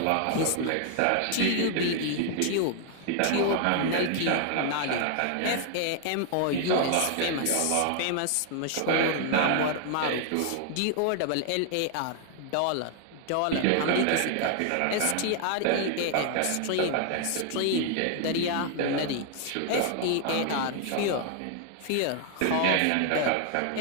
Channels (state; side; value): different; both; correlation 0.00